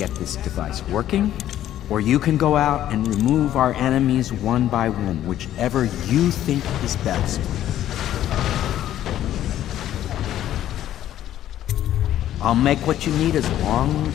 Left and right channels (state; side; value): quieter; right; 12.2 dB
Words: this device working, or you can go out and remove our enemies one by one, whichever you think is best. I'll make what you need as long